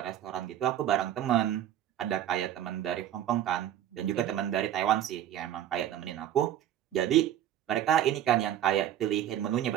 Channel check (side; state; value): left; quieter; 11.3 dB